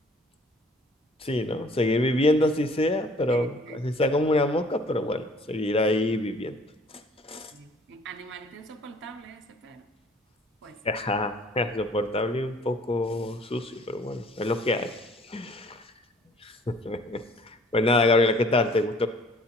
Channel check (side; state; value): both; normal; correlation 0.55